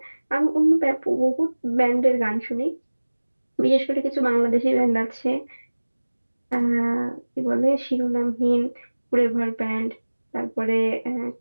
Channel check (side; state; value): both; inverted; correlation -1.00